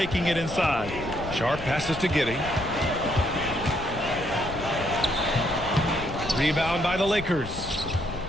it inside. Sharp passes to Giddy. Rebound by the Lakers.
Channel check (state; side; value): noise; left; rumble, 11 dB below the sound